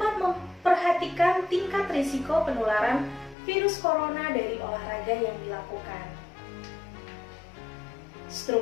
memperhatikan tingkat risiko penularan virus corona dari olahraga yang dilakukan.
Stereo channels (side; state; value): right; drops out; at 3.4 s